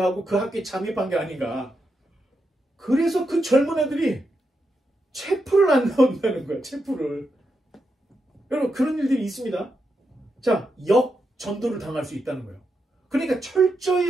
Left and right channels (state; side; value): normal; both; correlation 0.85